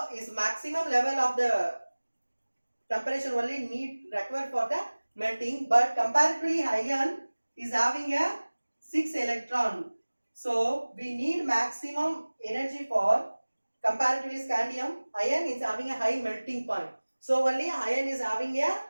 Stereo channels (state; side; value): inverted; both; correlation -1.00